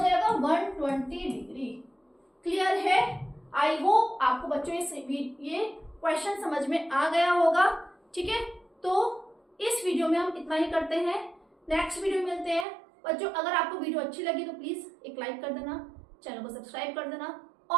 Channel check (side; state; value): left; drops out; at 12.7 s